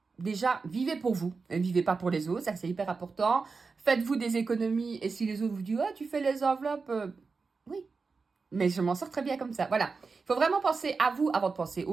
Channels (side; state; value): left; quieter; 4.5 dB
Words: déjà, vivez pour vous. Ne vivez pas pour les autres, ça c'est hyper important. Faites-vous des économies et si les autres vous disent « Ah, tu fais les enveloppes oui. Mais je m'en sors très bien comme ça. Voilà. Il faut vraiment penser à vous avant de penser